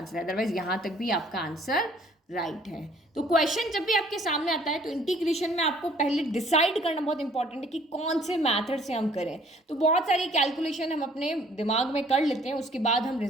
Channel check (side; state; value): both; normal; correlation 0.58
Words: है, अदरवाइज यहाँ तक भी आपका आंसर राइट है। तो क्वेश्चन जब भी आपके सामने आता है तो इंटीग्रेशन में आपको पहले डिसाइड करना बहुत इंपॉर्टेंट है कि कौन से मेथड से हम करें। तो बहुत सारी कैलकुलेशन हम अपने दिमाग में कर लेते हैं, उसके बाद हम